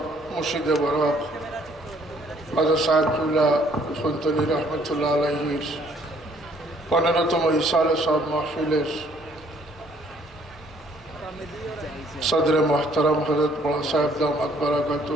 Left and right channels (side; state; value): both; normal; correlation 0.63